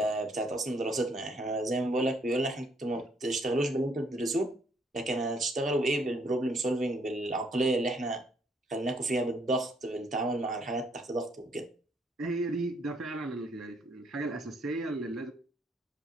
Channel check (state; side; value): normal; both; correlation 0.68